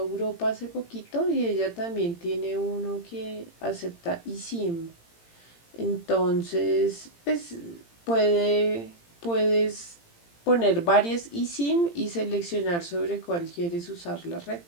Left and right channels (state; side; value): late; right; 18 ms